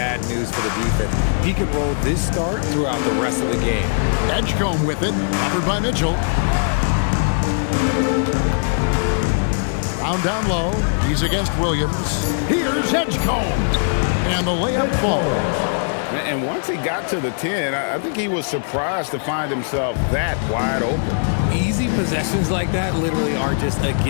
news for the defense. He can roll this start throughout the rest of the game. Edgecombe with it, covered by Mitchell. Brown down low. He's against Williams. Here's Edgecombe. And the layup falls. And once he got to the 10, I think he was surprised to find himself that wide open. Easy possessions like that literally are just a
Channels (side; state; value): right; silent; digital silence